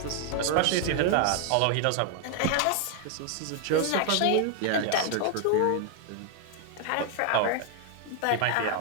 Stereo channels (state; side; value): different; both; correlation 0.00